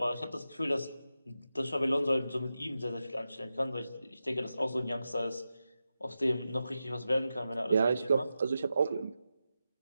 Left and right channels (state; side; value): inverted; both; correlation -0.91